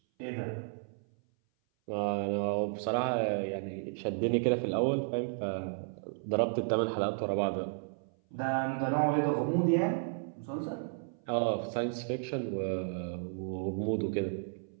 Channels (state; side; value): silent; left; 56 dB below the other